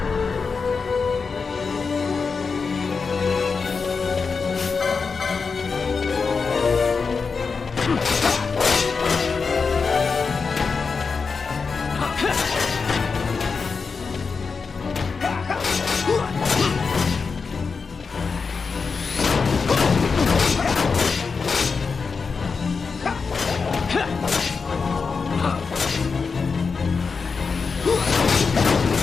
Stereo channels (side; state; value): right; quieter; 5.0 dB